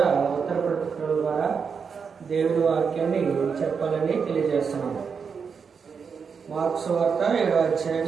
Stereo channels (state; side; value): quieter; left; 6.0 dB